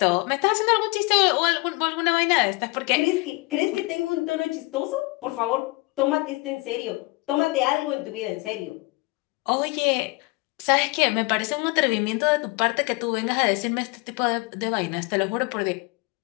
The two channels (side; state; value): right; quieter; 24.6 dB